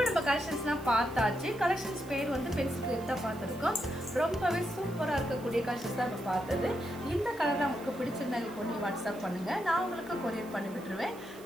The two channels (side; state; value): right; noise; hiss, 22 dB below the sound